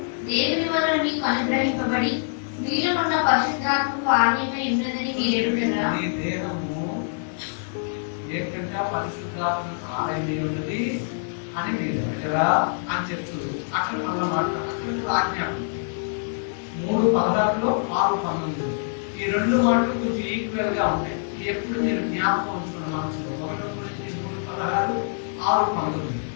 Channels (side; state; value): right; silent; 60 dB below the other